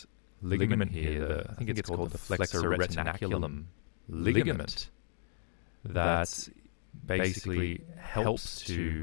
ligament here, I think it's called the flexor retinaculum ligament, that basically helps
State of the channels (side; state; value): right; silent; digital silence